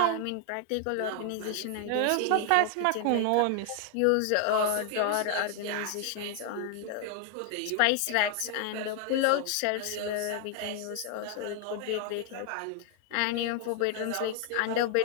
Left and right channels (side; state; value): both; different; correlation 0.00